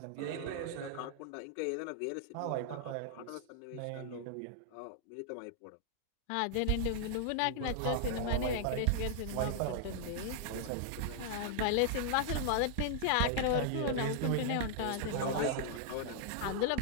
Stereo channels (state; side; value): different; both; correlation -0.01